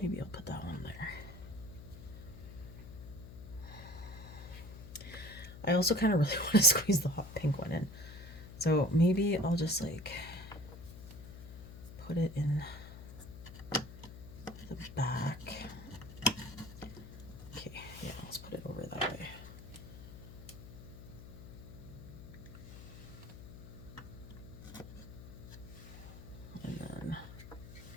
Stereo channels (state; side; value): noise; left; hum, 13 dB below the sound